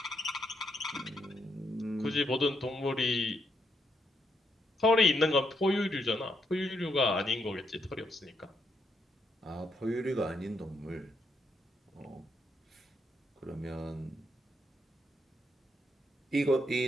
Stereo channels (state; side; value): normal; both; correlation 0.78